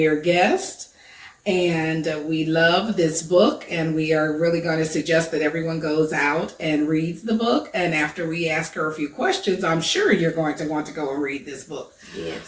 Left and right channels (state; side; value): identical; both; correlation 1.00